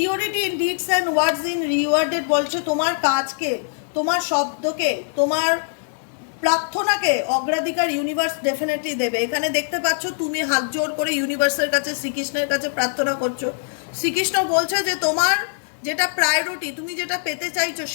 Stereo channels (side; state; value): right; silent; digital silence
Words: in deeds and words in rewarded বলছে তোমার কাজকে, তোমার শব্দকে, তোমার প্রার্থনাকে অগ্রাধিকার ইউনিভার্স ডেফিনেটলি দেবে। এখানে দেখতে পাচ্ছ তুমি হাত জোর করে ইউনিভার্সের কাছে, শ্রীকৃষ্ণের কাছে প্রার্থনা করছো। শ্রীকৃষ্ণ বলছে যে তোমার যেটা প্রায়োরিটি, তুমি যেটা পেতে চাইছো,